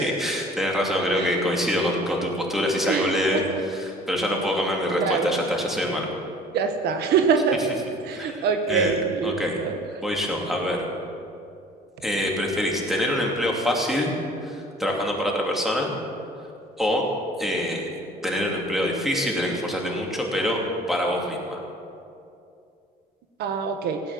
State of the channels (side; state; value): both; normal; correlation 0.48